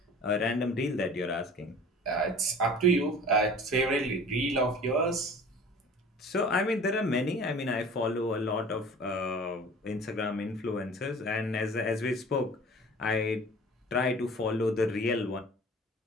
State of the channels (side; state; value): both; normal; correlation 0.44